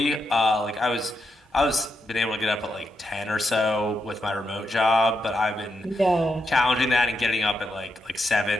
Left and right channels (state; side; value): normal; both; correlation 0.83